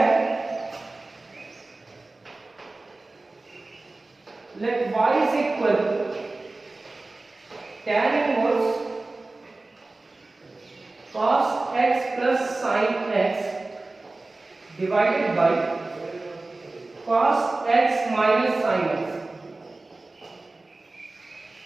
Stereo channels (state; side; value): quieter; left; 3.2 dB